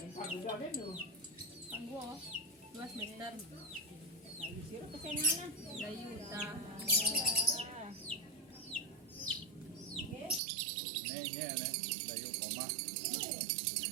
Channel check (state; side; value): drops out; left; at 10.4 s